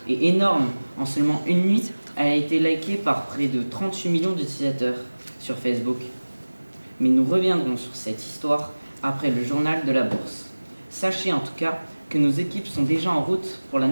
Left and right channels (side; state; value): both; inverted; correlation -1.00